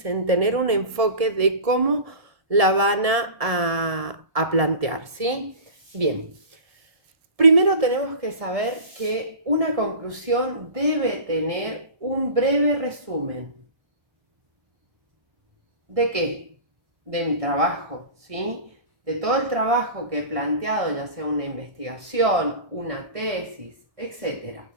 tener un enfoque de cómo la van a plantear, ¿sí? Bien. Primero tenemos que saber que una conclusión debe tener un breve resumen. ¿De qué? De mi trabajo, ¿sí? De todo el trabajo que he planteado, ya sea una investigación, una tesis, etc.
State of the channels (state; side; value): late; left; 1.7 ms